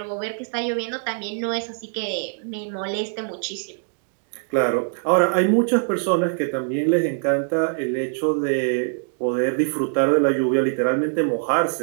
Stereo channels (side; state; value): left; silent; digital silence